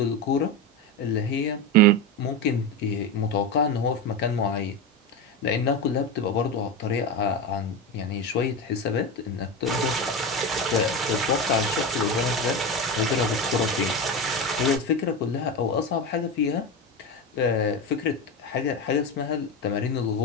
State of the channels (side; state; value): both; normal; correlation 0.19